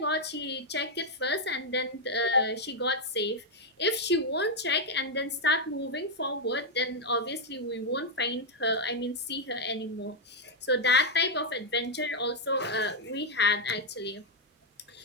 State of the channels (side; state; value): both; normal; correlation 0.00